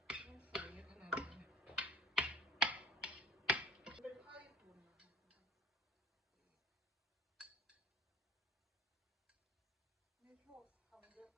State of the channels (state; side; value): normal; both; correlation 0.47